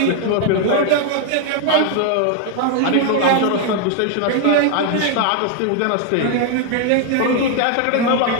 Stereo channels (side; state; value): both; different; correlation 0.00